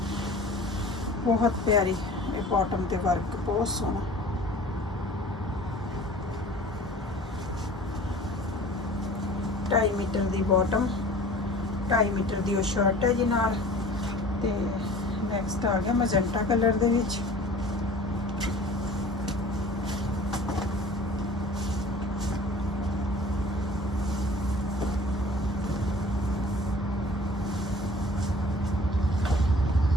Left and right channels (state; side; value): normal; both; correlation 0.45